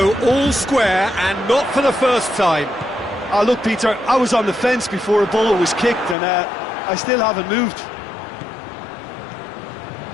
all square, and not for the first time. Oh, look, Peter, I was on the fence before a ball was kicked, and I still haven't moved.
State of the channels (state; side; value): drops out; right; at 6.2 s